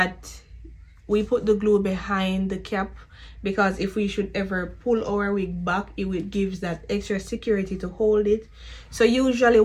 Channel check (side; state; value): both; identical; correlation 1.00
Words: we put the glue behind the cap because if we should ever pull our wig back, it gives that extra security to hold it. So usually